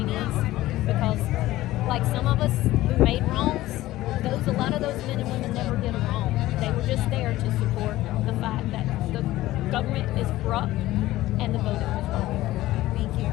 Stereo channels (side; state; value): right; quieter; 16.2 dB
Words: because like some of us who made wrongs, a lot of those men and women never did a wrong. They were just there to support the fact that the government is corrupt and the voting was wrong. Thank you.